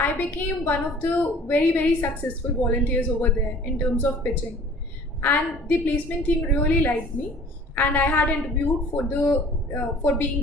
became one of the very successful volunteers over there in terms of pitching. And the placement team really liked me, and I had interviewed for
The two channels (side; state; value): both; normal; correlation 0.49